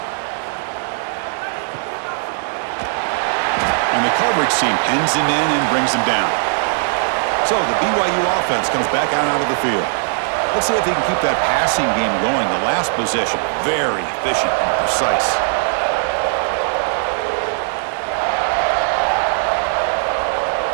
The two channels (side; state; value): left; silent; digital silence